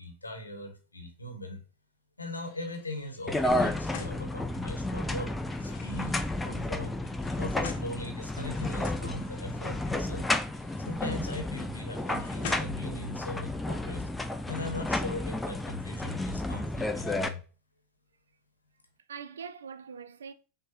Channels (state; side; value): normal; both; correlation 0.62